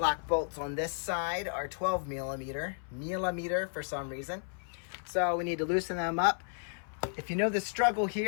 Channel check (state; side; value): silent; right; 56 dB below the other